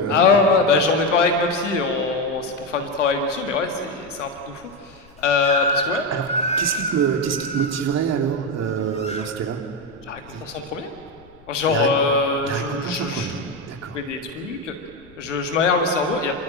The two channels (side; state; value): left; noise; rumble, 26 dB below the sound